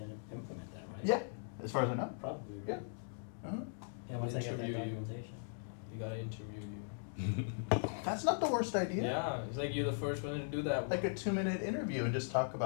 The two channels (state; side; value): silent; right; digital silence